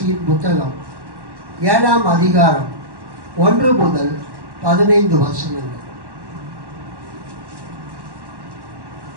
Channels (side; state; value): left; late; 1.1 ms